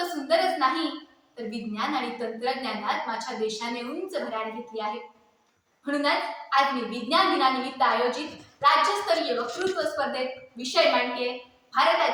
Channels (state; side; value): identical; both; correlation 1.00